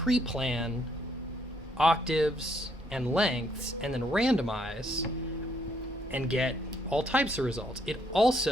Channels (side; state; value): both; normal; correlation 0.71